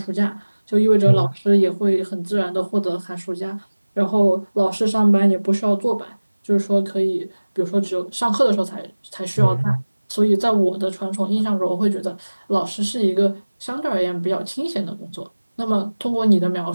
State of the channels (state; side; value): inverted; both; correlation -1.00